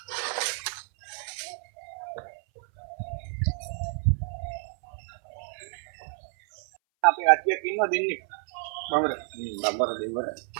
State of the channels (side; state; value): left; silent; 58 dB below the other